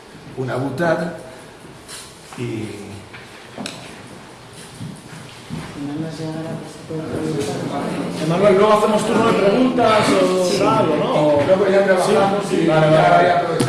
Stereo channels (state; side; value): identical; both; correlation 1.00